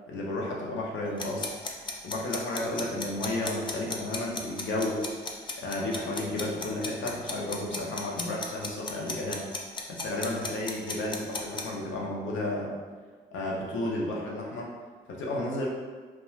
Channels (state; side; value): normal; both; correlation 0.38